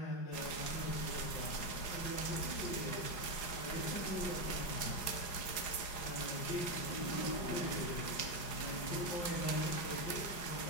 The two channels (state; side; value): late; right; 5.5 ms